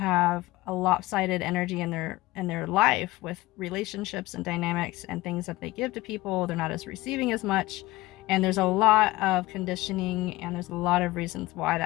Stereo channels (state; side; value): quieter; right; 18.9 dB